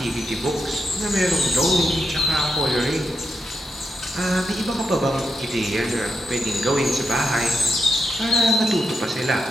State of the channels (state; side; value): normal; both; correlation 0.84